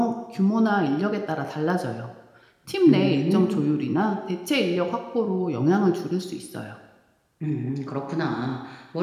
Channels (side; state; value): both; identical; correlation 1.00